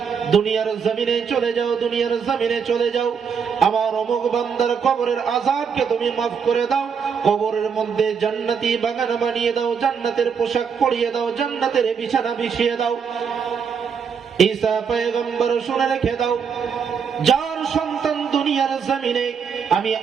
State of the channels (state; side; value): quieter; left; 6.6 dB